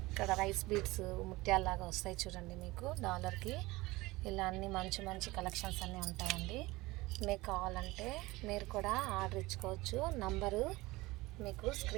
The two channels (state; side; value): quieter; left; 20.7 dB